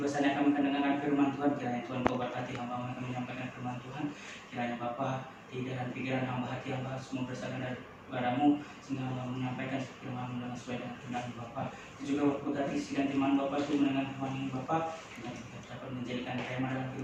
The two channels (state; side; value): identical; both; correlation 1.00